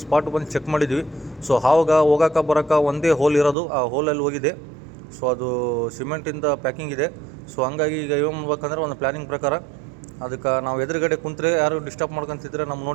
ಸ್ಪಾಟ್ ಬಂದು ಚೆಕ್ ಮಾಡಿದ್ವಿ. ಸೊ ಹಾವಾಗ ಹೋಗೋಕೆ ಬರೋಕೆ ಒಂದೇ ಹೋಲ್ ಇರೋದು, ಆ ಹೋಲಲ್ಲಿ ಹೋಗಿದೆ. ಸೊ ಅದು ಸಿಮೆಂಟಿಂದ ಪ್ಯಾಕಿಂಗ್ ಇದೆ. ಸೊ ಹಂಗಾಗಿ ಈಗ ಏನು ಮಾಡ್ಬೇಕಂದ್ರೆ ಒಂದು ಪ್ಲ್ಯಾನಿಂಗ್ ಪ್ರಕಾರ ಅದಕ್ಕೆ ನಾವು ಎದುರುಗಡೆ ಕುಂತ್ರೆ ಯಾರು ಡಿಸ್ಟರ್ಬ್ ಮಾಡ್ಕೊತಿದ್ರೆ ನಮ್ಮ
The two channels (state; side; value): drops out; left; at 3.6 s